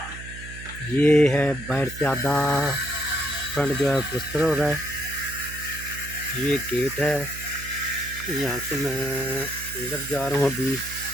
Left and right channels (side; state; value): right; noise; hum, 13 dB below the sound